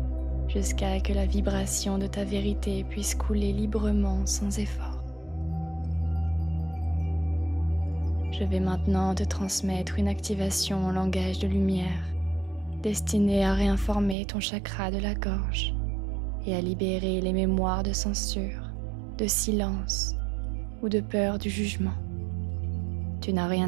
jusqu'à que la vibration de ta vérité puisse couler librement sans effort. Je vais maintenant te transmettre une activation en langage de lumière destinée à réinformer ton chakra de la gorge et à libérer les mémoires de censure, de silence ou de peur du jugement. Tu n'as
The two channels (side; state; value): left; drops out; at 14.2 s